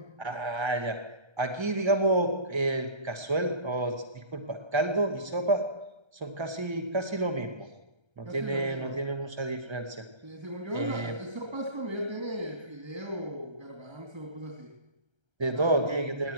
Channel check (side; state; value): left; late; 1.3 ms